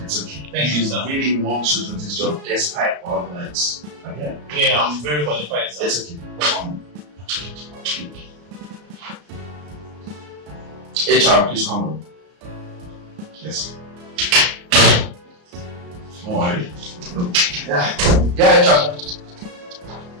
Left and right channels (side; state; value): left; late; 34 ms